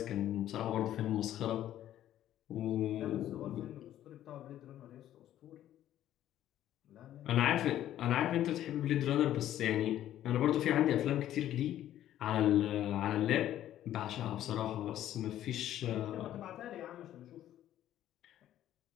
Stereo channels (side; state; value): right; quieter; 12.3 dB